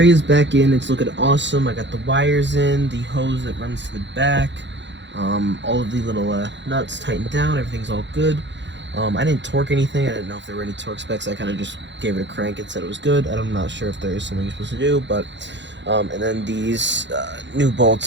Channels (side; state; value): left; late; 0.52 ms